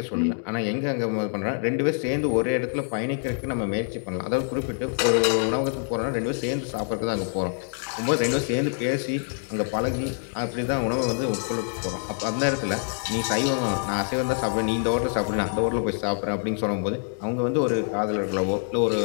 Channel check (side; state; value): right; silent; 61 dB below the other